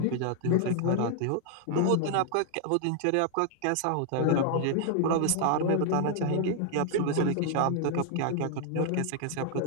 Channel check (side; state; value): both; different; correlation 0.00